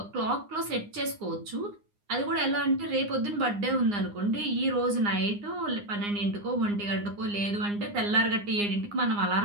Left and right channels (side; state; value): left; late; 9.8 ms